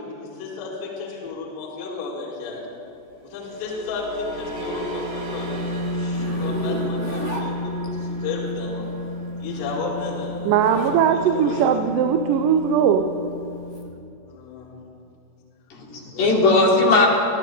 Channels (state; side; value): late; right; 14 ms